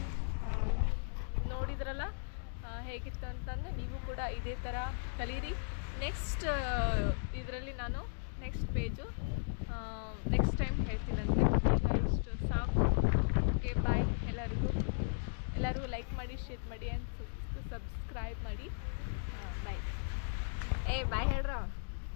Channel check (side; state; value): right; silent; digital silence